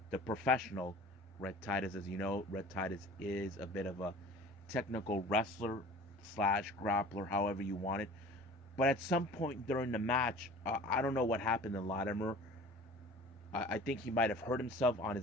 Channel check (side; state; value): both; normal; correlation 0.44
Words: the professional Rhett Titus. As you know, Rhett Titus is a bit of a technical wrestler slash grappler, however you want it. But at some point during the match, I don't know what happened to Latimer. I think he might have hurt himself on